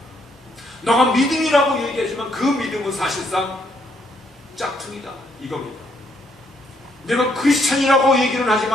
너가 믿음이라고 얘기하지만 그 믿음은 사실상 짝퉁이다 이겁니다. 내가 크리스찬이라고 얘기는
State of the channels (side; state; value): both; normal; correlation 0.72